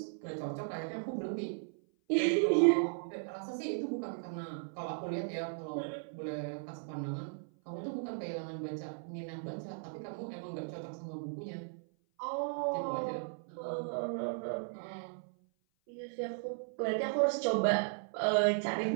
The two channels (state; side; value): silent; left; 54 dB below the other